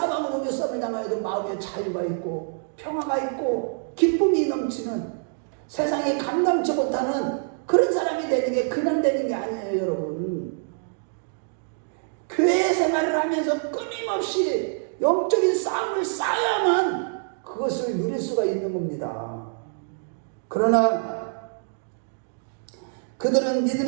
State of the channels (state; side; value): silent; left; digital silence